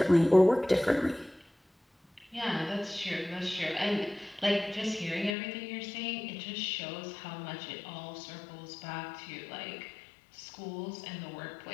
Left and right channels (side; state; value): right; drops out; at 5.3 s